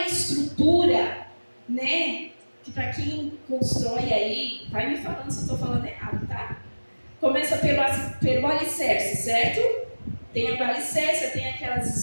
estrutura, né, que para quem constrói aí, vai me falando se eu estou falando errado, tá? Começa pelo alicerce, certo? Tem a alicerce, tem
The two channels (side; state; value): both; inverted; correlation -1.00